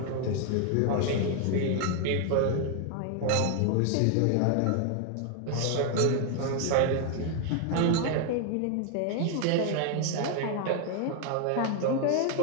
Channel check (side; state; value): both; different; correlation 0.00